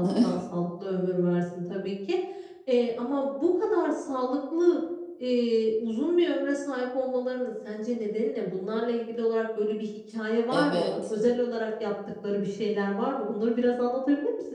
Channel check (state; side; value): identical; both; correlation 1.00